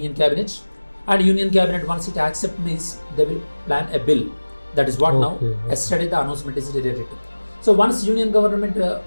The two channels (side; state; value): both; inverted; correlation -1.00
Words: Cabinet. And Union Cabinet, once it accepts, means they will plan a bill. That is what now, yesterday the announcement is related to. So once Union Government,